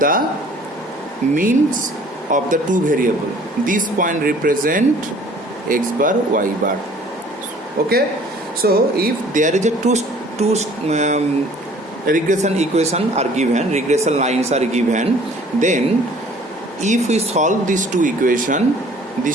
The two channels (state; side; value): normal; both; correlation 0.53